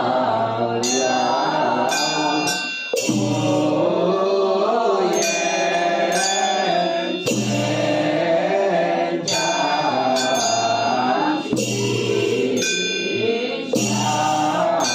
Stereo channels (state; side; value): identical; both; correlation 1.00